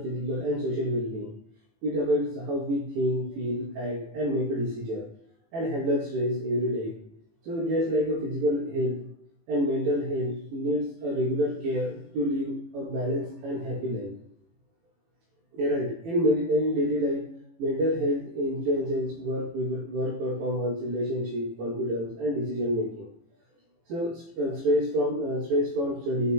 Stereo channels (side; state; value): left; late; 18 ms